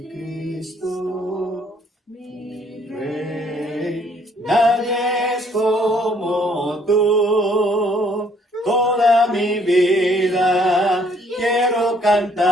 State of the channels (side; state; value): both; normal; correlation 0.64